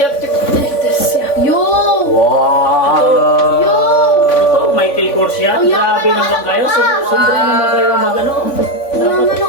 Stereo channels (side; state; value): right; late; 3.5 ms